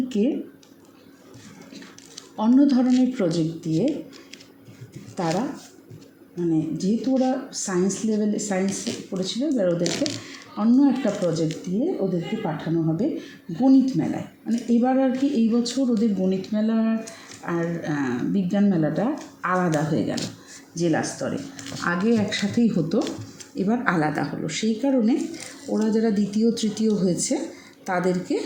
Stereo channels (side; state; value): both; identical; correlation 1.00